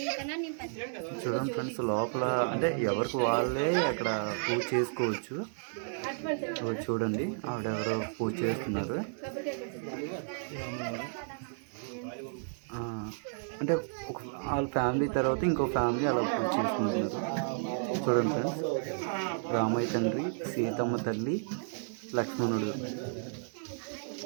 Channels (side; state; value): left; silent; digital silence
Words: చూడండి ఫ్రెండ్స్, లోపల అంటే ఎవరికి వాళ్ళే అక్కడ పూజ చేసుకోవచ్చు. చూడండి, ఆవిడెవరో పూజ చేస్తున్నారు. అంటే వాళ్ళ ఫ్యామిలీ తర్వాత ఇంకో ఫ్యామిలీ అలా పూజ చేసుకుంటున్నారు. చూడండి ఫ్రెండ్స్, రామయ్య తండ్రి, సీతమ్మ తల్లి, లక్ష్మణుడు.